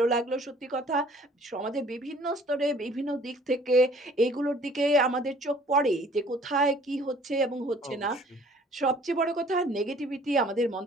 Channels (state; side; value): normal; both; correlation 0.55